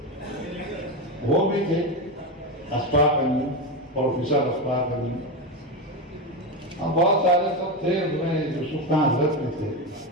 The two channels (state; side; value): normal; both; correlation 0.15